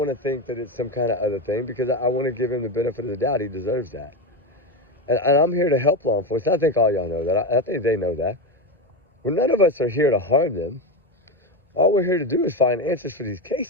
to think that it's some kind of other thing because I want to give him the benefit of the doubt. He deserves that. And I'm here to help law enforcement. I think all y'all know that. I think they know that. Well, none of us are here to harm them. All we're here to do is find answers for these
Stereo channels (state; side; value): normal; both; correlation 0.16